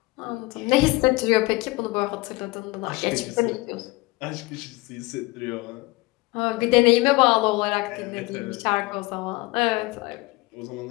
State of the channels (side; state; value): right; quieter; 22.6 dB